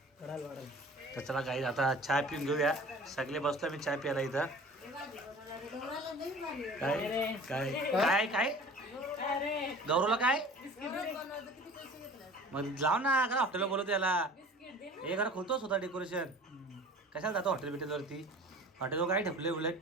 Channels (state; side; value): normal; both; correlation 0.43